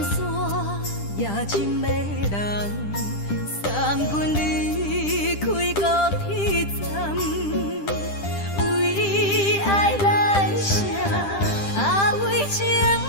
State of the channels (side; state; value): right; late; 10 ms